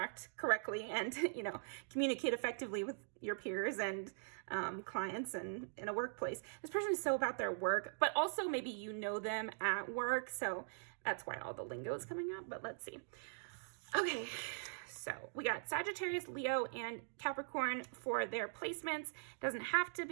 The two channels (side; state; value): left; silent; digital silence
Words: correctly and, you know, communicate effectively with your peers and clients and in a workplace. This person is so about their work, but also maybe you know them at work. So that's why all the lingo is coming up, but let's see. Okay. So we got Sagittarius, Leo, and Capricorn for their placements. Doesn't have to